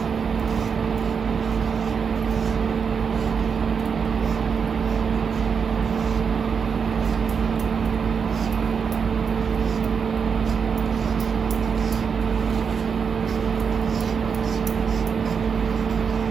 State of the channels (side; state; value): left; quieter; 6.3 dB